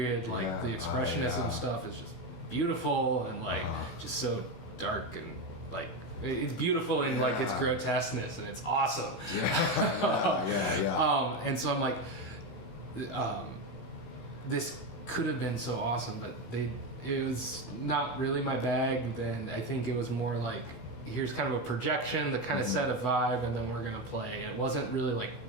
Like the expressionism stuff is just beautiful, and like just so dark, and like it's beautiful in like its grotesqueness, and it's awesome. And so I'm like, this could have been so awesome, but it was not really my bag. Then I think it was more like, here's kind of a projection that kind of set a vibe, and then we're gonna play. And it wasn't really like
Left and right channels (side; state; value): right; late; 16 ms